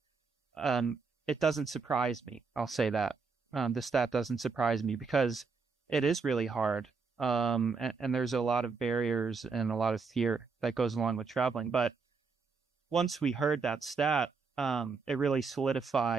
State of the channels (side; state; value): left; quieter; 4.9 dB